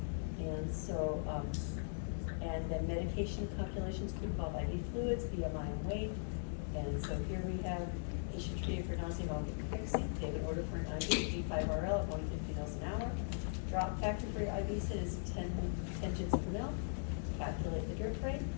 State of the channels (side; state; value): right; silent; digital silence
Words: And so, and then medication calculations could involve IV fluids, BMI and weight. And so here we have patient treated for nausea, vomiting, and pregnancy. They have an order for an IV, D5RL at 150 mils an hour. Drop factor for your IV sit is 10 gins per mil. Calculate the drip rate.